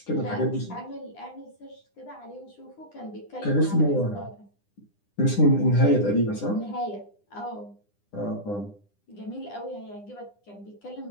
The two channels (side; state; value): right; late; 9.9 ms